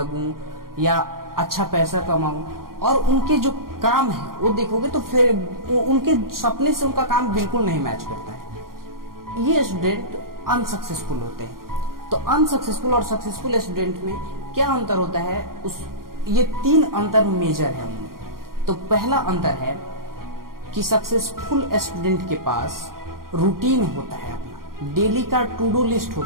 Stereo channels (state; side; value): late; left; 0.92 ms